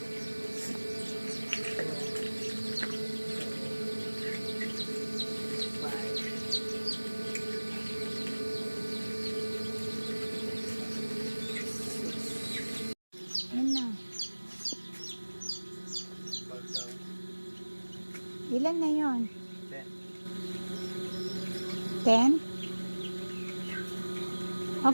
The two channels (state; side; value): inverted; both; correlation -1.00